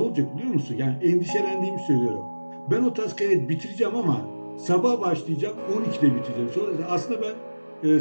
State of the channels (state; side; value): inverted; both; correlation -1.00